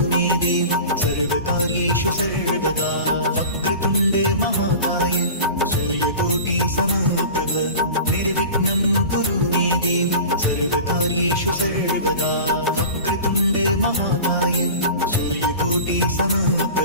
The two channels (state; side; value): inverted; both; correlation -0.36